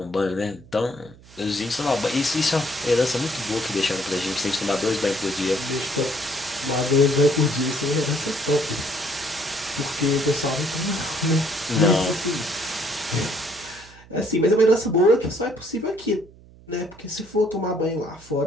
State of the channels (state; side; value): noise; right; hum, 23 dB below the sound